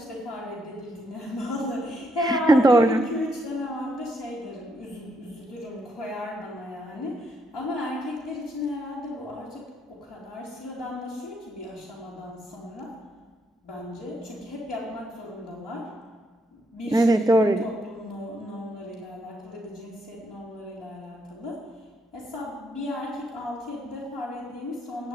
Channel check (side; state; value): both; normal; correlation 0.75